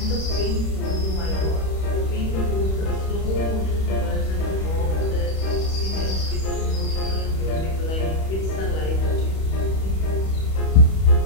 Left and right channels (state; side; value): late; right; 31 ms